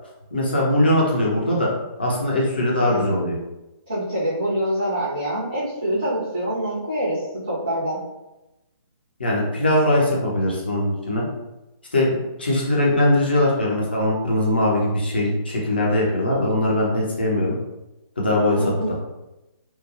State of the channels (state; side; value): inverted; both; correlation -0.60